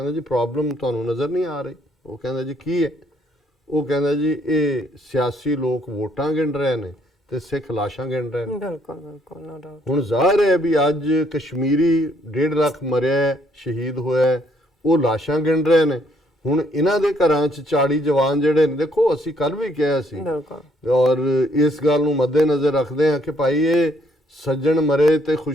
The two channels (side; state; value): both; normal; correlation 0.68